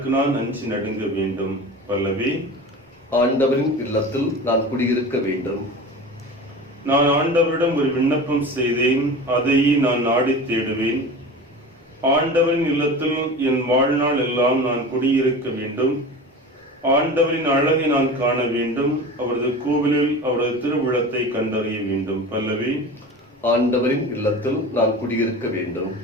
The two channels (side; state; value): both; normal; correlation 0.33